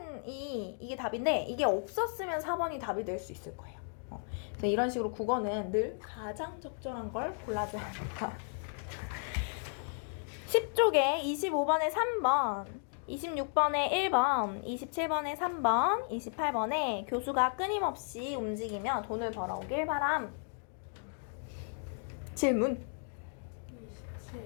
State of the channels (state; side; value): silent; right; 55 dB below the other